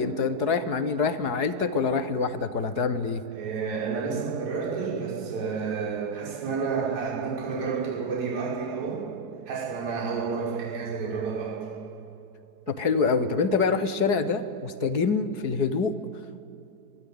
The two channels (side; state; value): left; late; 4.7 ms